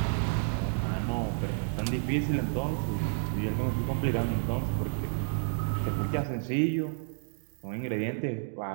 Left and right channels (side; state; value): left; silent; digital silence